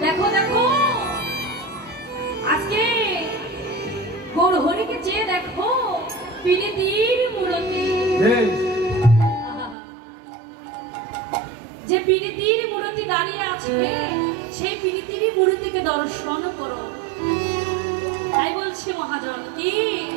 দেখো দেখো আজকে গৌরহরিকে চেয়ে দেখো, পীড়িতির মূরতি, যে পীড়িতির মূরতি দাঁড়িয়ে আছে সেই পীড়িতির মূরতিকে দর্শন করো। তাই বলছি মহাজন কি,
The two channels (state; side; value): drops out; left; at 9.8 s